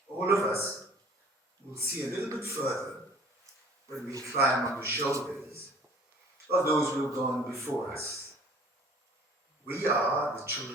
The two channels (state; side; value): normal; both; correlation 0.51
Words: All of us will see a little bit further when we climb on the shoulders of those who have gone before us. We are the